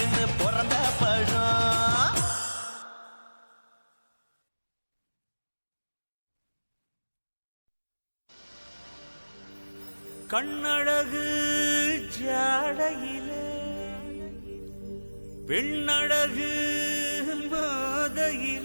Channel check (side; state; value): both; inverted; correlation -1.00